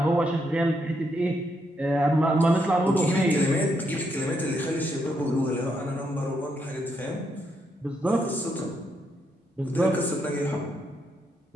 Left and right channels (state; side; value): normal; both; correlation 0.78